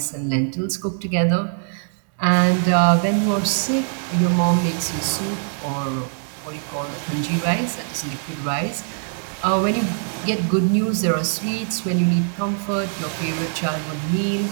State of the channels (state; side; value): silent; left; 64 dB below the other